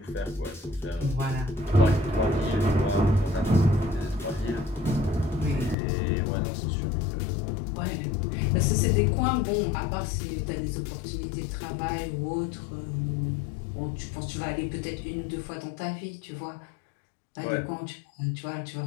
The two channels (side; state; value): right; drops out; at 5.8 s